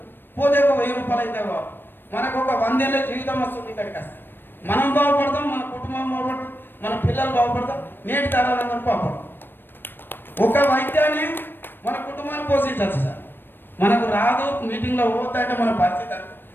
పోతే ఒక 1000 రూపాయలు అయితే మనకు ఒక 100 ఏళ్ళ జీవితం వస్తుంది. ఇక్కడికి వస్తే మనం బాగుపడతాం, మన కుటుంబం బాగుపడతాం, మన పిల్లలు బాగుపడతాం, నేటి తరాలందరూ బాగుపడతాం. ఒక వైద్యాన్ని మన కుటుంబాన్ని పోషించవచ్చు సార్. మనకు రాదు, మీటింగ్లో పోతాయంటే మన పరిస్థితి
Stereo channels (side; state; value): right; late; 0.096 ms